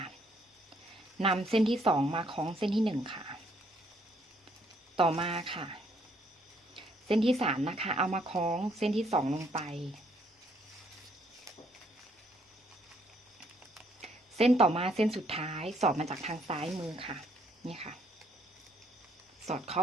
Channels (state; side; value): normal; both; correlation 0.68